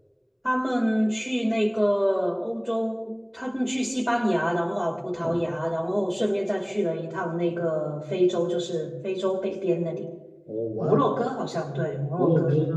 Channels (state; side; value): identical; both; correlation 1.00